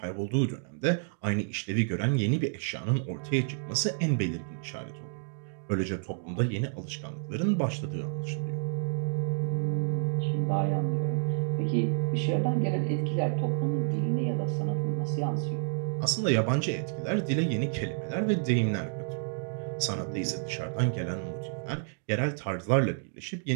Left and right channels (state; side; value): silent; left; digital silence